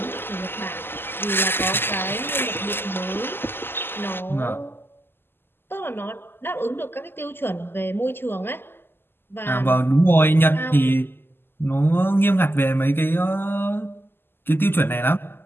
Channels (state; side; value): late; right; 0.10 ms